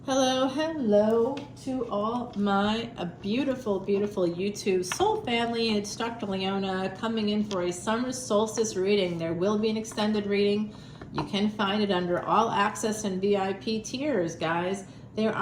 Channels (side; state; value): both; identical; correlation 1.00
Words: Hello to all my beautiful YouTube soul family. It's Dr. Leona coming in for a summer solstice reading. There will be an extended reading. You can find it under all access and VIP tiers, guys. There